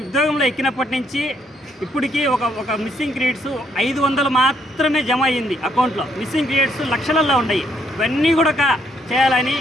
ఉద్యోగంలో ఎక్కినప్పటి నుంచి ఇప్పటికీ ఒక మిస్సింగ్ క్రెడిట్స్ 500 మాత్రమే జమ అయ్యింది అకౌంట్లో. మిస్సింగ్ క్రెడిట్స్ లక్షలలో ఉన్నాయి. ఇవన్నీ కూడా చేయాలని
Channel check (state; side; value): normal; both; correlation 0.71